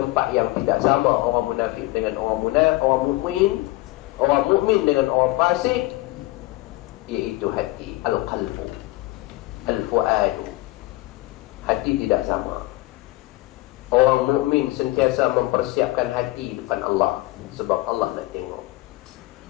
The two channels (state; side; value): quieter; right; 19.7 dB